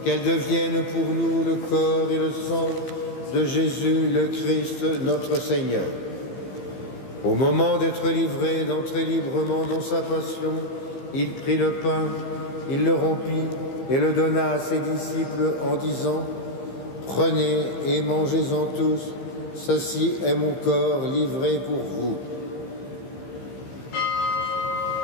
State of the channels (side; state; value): right; late; 15 ms